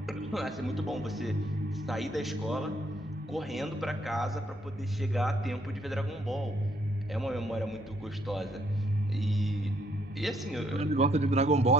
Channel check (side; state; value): both; normal; correlation 0.70